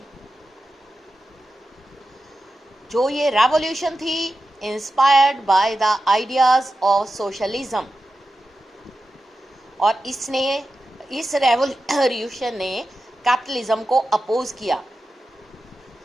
जो ये revolution थी inspired by the ideas of socialism, और इस revolution ने capitalism को अपोज किया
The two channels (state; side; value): normal; both; correlation 0.92